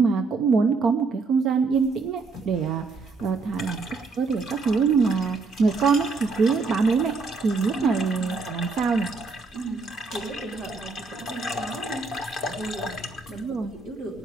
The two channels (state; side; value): quieter; left; 4.2 dB